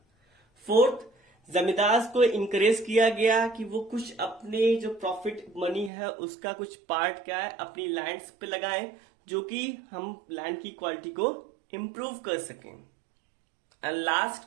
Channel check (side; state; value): left; drops out; at 5.9 s